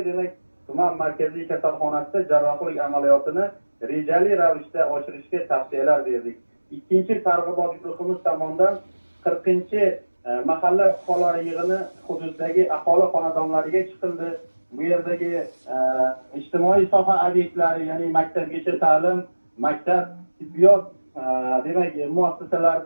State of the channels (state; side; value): inverted; both; correlation -1.00